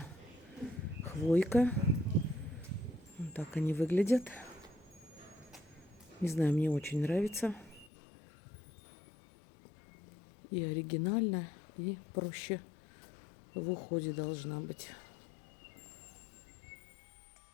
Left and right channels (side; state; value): right; drops out; at 7.9 s